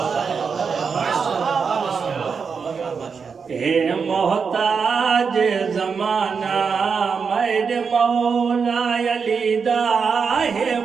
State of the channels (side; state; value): left; quieter; 5.7 dB